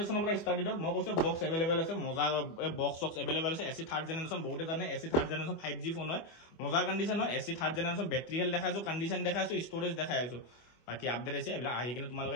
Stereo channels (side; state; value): right; late; 24 ms